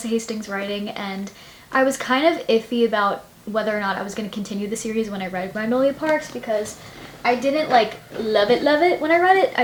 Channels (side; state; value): both; identical; correlation 1.00